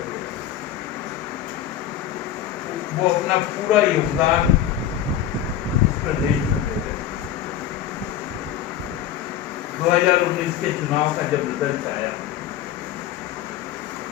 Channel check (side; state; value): right; quieter; 10.7 dB